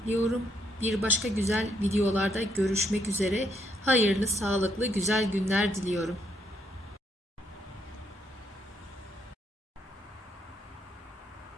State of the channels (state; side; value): normal; both; correlation 0.74